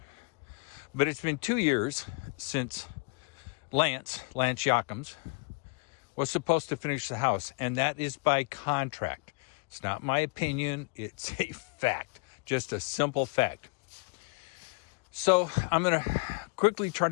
but it's been 2 years since Lance Jochims was supposed to finish the house, and that is by contract. It's not my opinion, it's a fact, just a simple fact. So I'm gonna quickly try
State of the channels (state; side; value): quieter; right; 31.8 dB